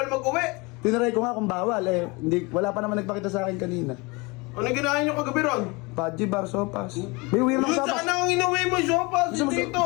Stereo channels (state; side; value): quieter; right; 26.4 dB